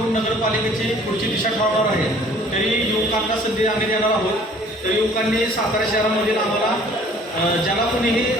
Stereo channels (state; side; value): normal; both; correlation 0.54